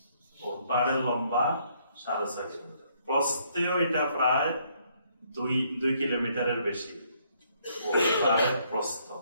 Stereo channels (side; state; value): both; inverted; correlation -0.68